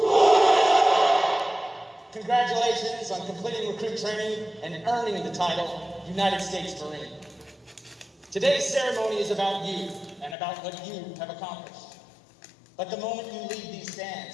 Congratulations on completing recruit training and earning the title United States Marine. Today's ceremony is about you and about what you have accomplished. But the moment you leave these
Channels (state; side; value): drops out; right; at 10.4 s